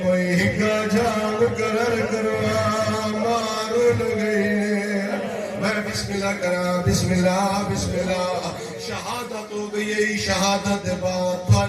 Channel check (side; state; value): both; identical; correlation 1.00